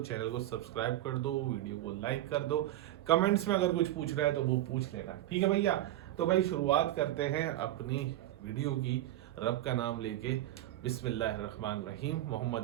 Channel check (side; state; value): left; quieter; 14.4 dB